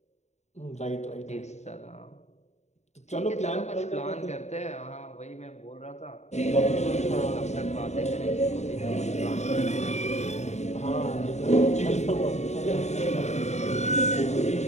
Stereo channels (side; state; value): right; late; 0.33 ms